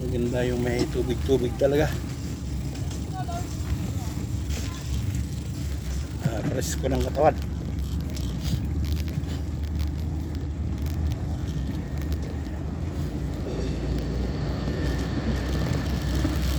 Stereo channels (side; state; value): both; identical; correlation 1.00